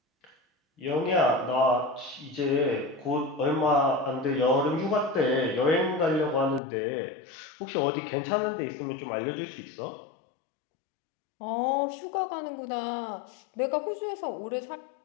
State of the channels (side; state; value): right; drops out; at 6.6 s